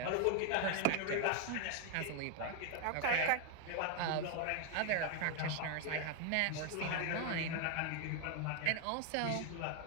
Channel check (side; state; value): both; different; correlation 0.01